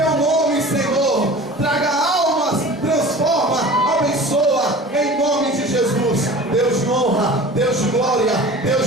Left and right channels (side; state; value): both; normal; correlation 0.40